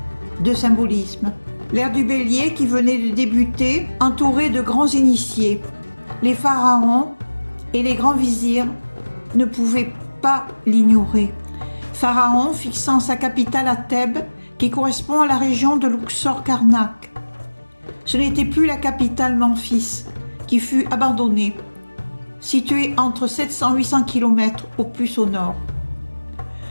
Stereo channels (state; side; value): inverted; both; correlation -1.00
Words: de symbolisme. L'ère du Bélier qui venait de débuter, entourée de grands initiés. Les pharaons et les grands vizirs ne pouvaient pas l'ignorer. Pharaon fixant sa capitale à Thèbes, qui correspond à la région de Luxor-Karnak. Ce n'était plus la capitale Memphis, qui fut abandonnée, située entre 700 et 800 km au plus au nord.